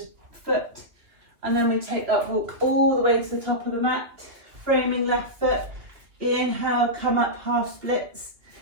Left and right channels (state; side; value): late; left; 2.8 ms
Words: foot. And then we take that walk all the way to the top of the mat. Framing left foot. Inhale, come up, half splits.